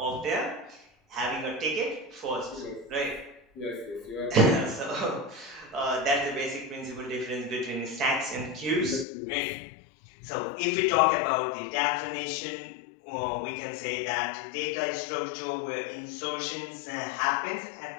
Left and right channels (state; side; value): drops out; right; at 9.1 s